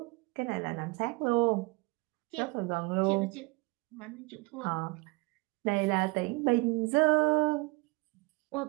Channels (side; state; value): left; quieter; 26.0 dB